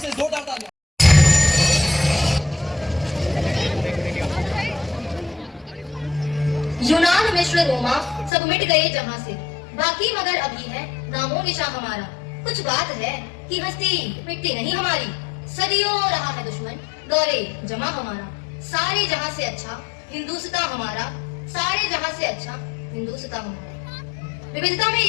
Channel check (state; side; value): drops out; right; at 8.3 s